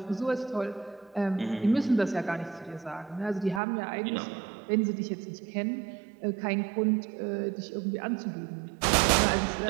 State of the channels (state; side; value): drops out; left; at 3.6 s